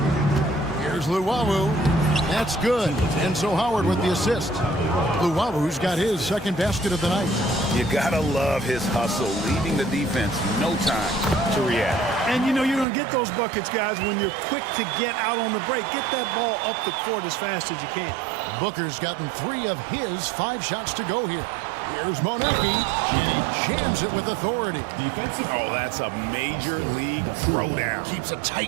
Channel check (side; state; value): left; drops out; at 12.9 s